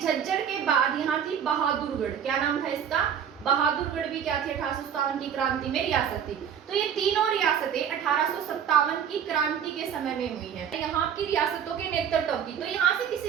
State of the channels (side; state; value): left; quieter; 8.4 dB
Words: के बाद यहाँ थी बहादुरगढ़। क्या नाम था इसका, बहादुरगढ़ भी क्या थी, 1857 की क्रांति में रियासत थी। तो ये तीनों रियासतें 1857 की क्रांति के समय में हुई है। यहाँ की रियासतों के नेतृत्व की, तो यहाँ से